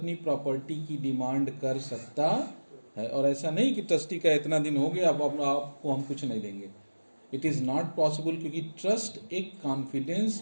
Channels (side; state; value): both; inverted; correlation -1.00